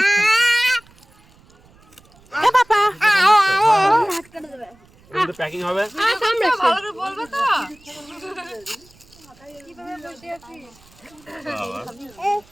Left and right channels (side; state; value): right; noise; rumble, 28 dB below the sound